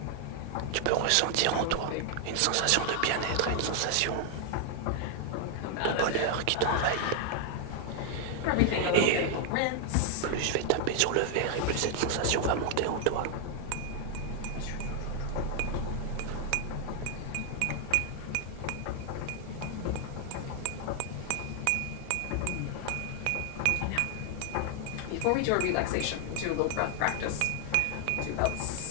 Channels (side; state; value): both; different; correlation 0.00